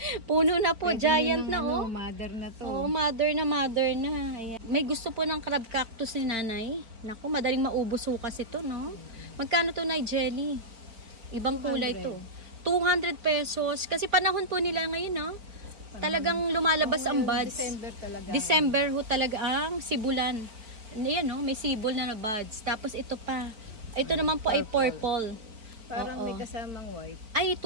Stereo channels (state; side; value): late; left; 4.4 ms